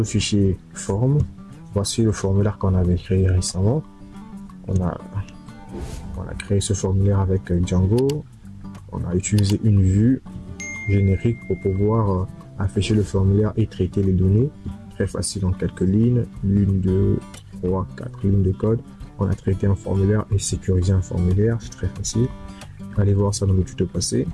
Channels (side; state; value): both; identical; correlation 1.00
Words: fichier forme. Voici le formulaire qu'on avait créé récemment. On a créé ce formulaire avec Django. On a utilisé une vue générique pour pouvoir afficher le formulaire et traiter les données. Très facile en quelques lignes. 1, 2, 3, 4 lignes de code. On a traité un formulaire et sécurisé un formulaire. C'est très facile. Allez voir ça dans le tuto passé.